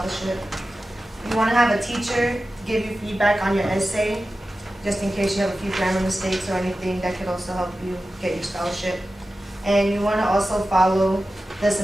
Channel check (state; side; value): normal; both; correlation 0.94